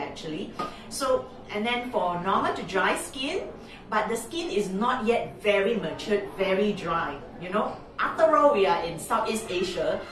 So, and then for normal to dry skin, but the skin is not yet very matured, very dry. You know, after all, we are in Southeast Asia.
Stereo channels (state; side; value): identical; both; correlation 1.00